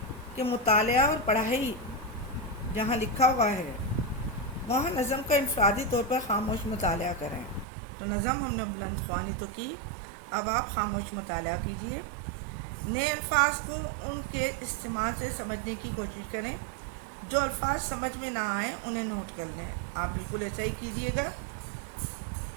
कि मुतालिया और पढ़ाई جہاں لکھا ہوا ہے وہاں نظم کا انفرادی طور پر خاموش مطالعہ کریں۔ تو نظم ہم نے بلند خوانی تو کی، اب آپ خاموش مطالعہ کیجئے۔ نئے الفاظ کو ان کے استعمال سے سمجھنے کی کوشش کریں، جو الفاظ سمجھ میں نہ آئیں انہیں نوٹ کر لیں۔ آپ بالکل ایسا ہی کیجئے گا۔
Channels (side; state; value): left; drops out; at 7.7 s